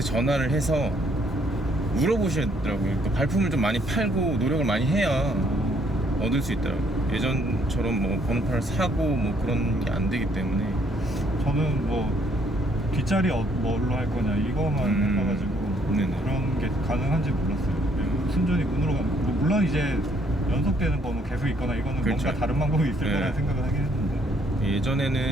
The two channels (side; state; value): both; normal; correlation 0.67